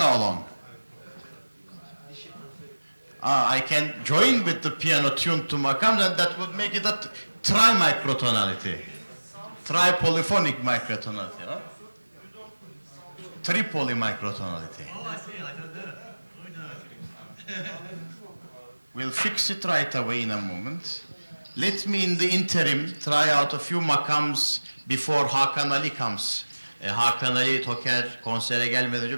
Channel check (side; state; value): both; inverted; correlation -1.00